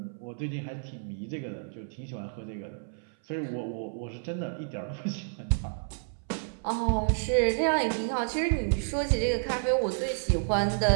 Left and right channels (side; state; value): left; silent; 58 dB below the other